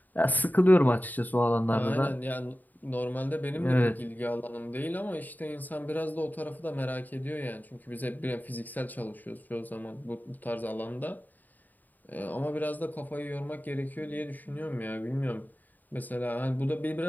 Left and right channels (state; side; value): late; right; 0.085 ms